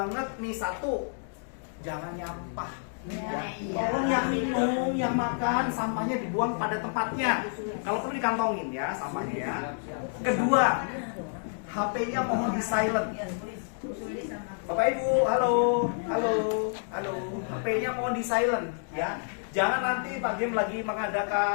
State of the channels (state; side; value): silent; right; digital silence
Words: nih, satu, jangan nyampah ya. Tolong yang minum, yang makan, sampahnya dibuang pada tempatnya. Kalau perlu dikantongin ya sampahnya ya. Kedua, HP-nya mohon di silent. Bapak Ibu, halo, HP-nya mohon di silent ya. Jangan nanti Pak Gem lagi